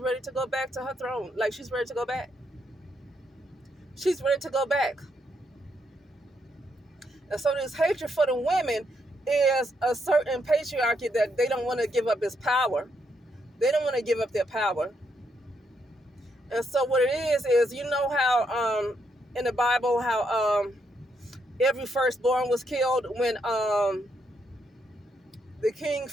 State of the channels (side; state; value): both; normal; correlation 0.77